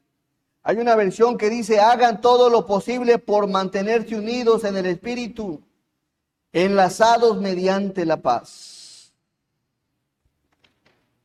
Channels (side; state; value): both; identical; correlation 1.00